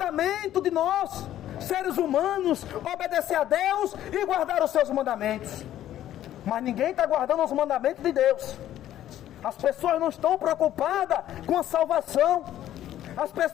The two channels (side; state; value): right; quieter; 12.3 dB